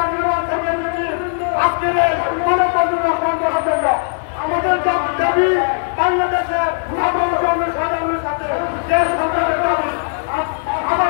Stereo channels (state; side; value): silent; right; 65 dB below the other